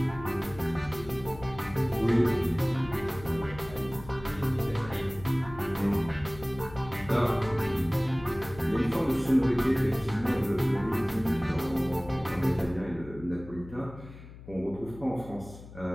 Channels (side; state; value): left; noise; hum, 16 dB below the sound